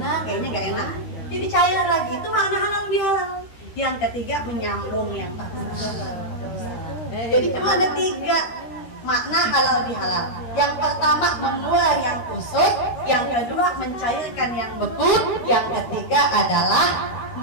kayaknya nggak enak. Jadi cair lagi, itu makna halal lebih halal. Yang ketiga, menyambung yang putus. Jadi cuma ada 3 makna halal lebih halal. Yang pertama, mengurai yang kusut. Yang kedua, mencairkan yang beku. Yang ketiga adalah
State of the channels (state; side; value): late; right; 13 ms